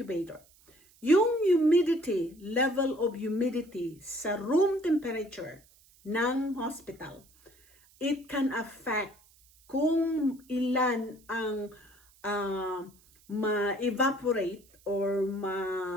Yung humidity, level of humidity sa room temperature ng hospital, it can affect kung ilan ang ma-evaporate or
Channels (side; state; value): right; noise; hiss, 29 dB below the sound